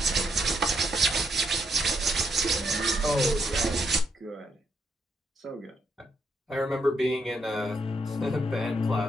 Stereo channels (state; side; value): normal; both; correlation 0.76